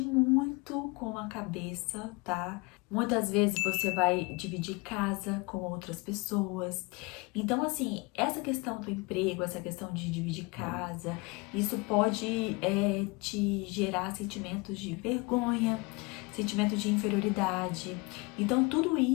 muito com a cabeça, tá? Muitas vezes você vai dividir casa com outras pessoas. Então, assim, essa questão do emprego, essa questão de dividir casa, isso pode te gerar sentimentos de vergonha, sentimento de inferioridade. Então, tudo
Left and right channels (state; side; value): quieter; right; 26.9 dB